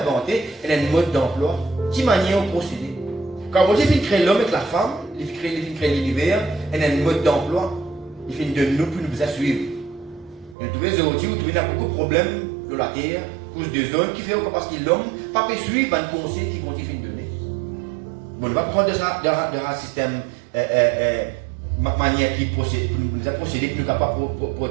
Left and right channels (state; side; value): drops out; left; at 10.6 s